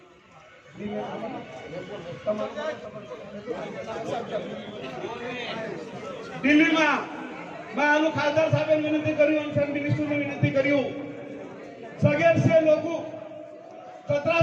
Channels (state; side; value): identical; both; correlation 1.00